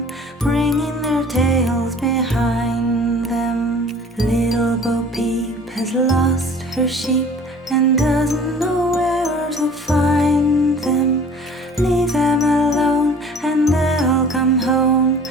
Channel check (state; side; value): normal; both; correlation 0.48